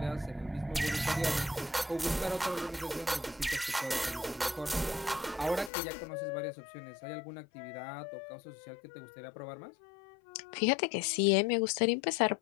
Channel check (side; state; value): right; drops out; at 5.7 s